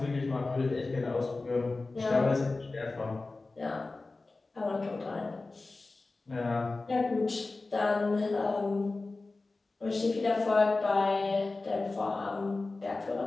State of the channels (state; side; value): quieter; right; 3.4 dB